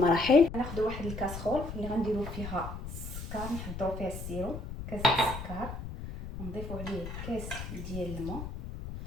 غناخذوا واحد الكاسرول اللي غنديروا فيها السكر، نحضروا فيها السيرو، كاس السكر، نضيفوا عليه كاس ديال الماء،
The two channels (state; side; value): noise; left; rumble, 8 dB below the sound